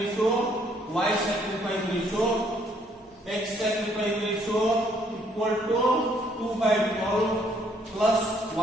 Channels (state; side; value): normal; both; correlation 0.67